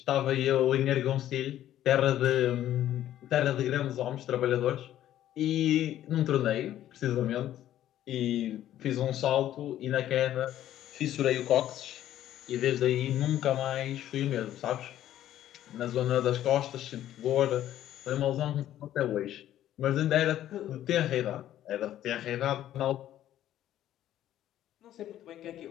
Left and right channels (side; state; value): right; quieter; 12.3 dB